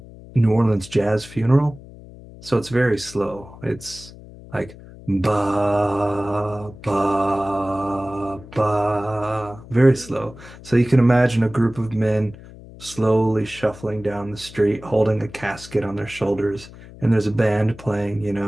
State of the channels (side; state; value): left; noise; hum, 18 dB below the sound